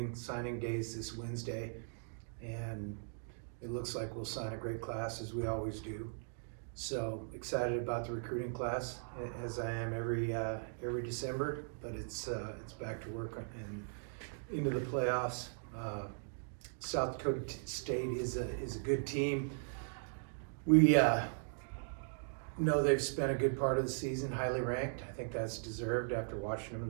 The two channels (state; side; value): silent; left; digital silence